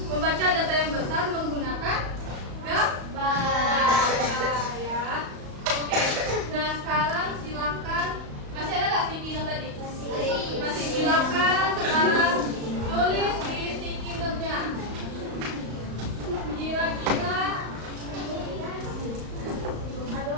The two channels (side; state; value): left; late; 35 ms